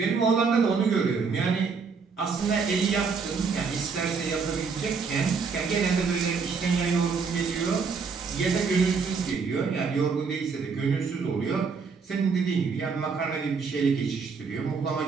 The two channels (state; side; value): quieter; left; 5.2 dB